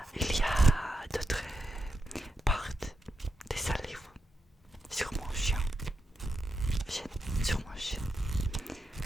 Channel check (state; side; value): normal; both; correlation 0.85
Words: il y a d'autres parts de ce livre sur mon chien, sur mon chien.